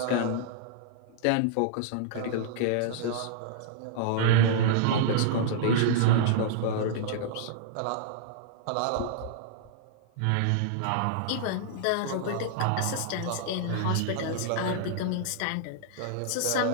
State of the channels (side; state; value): both; different; correlation -0.01